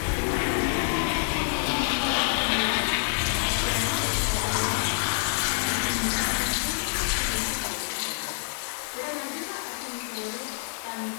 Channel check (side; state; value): right; silent; digital silence